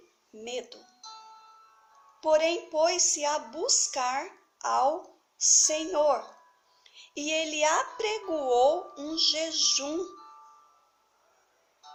medo. Porém, pôs-se a buscar ao Senhor, e ele apregoou um jejum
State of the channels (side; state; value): both; identical; correlation 1.00